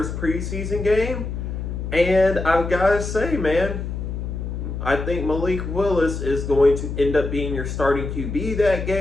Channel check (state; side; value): noise; left; hum, 5 dB below the sound